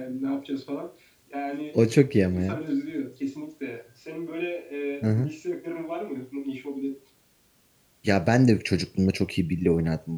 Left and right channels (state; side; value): identical; both; correlation 1.00